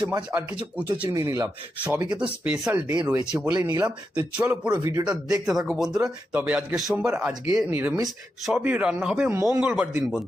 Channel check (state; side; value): normal; both; correlation 0.86